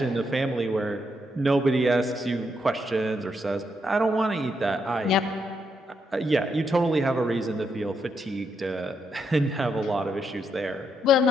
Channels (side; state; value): both; normal; correlation 0.78